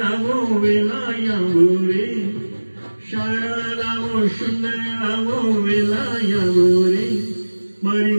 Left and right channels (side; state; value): both; inverted; correlation -1.00